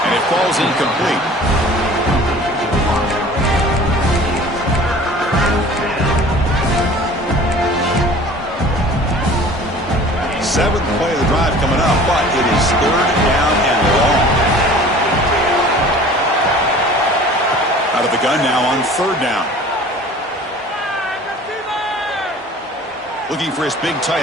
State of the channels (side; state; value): both; normal; correlation 0.45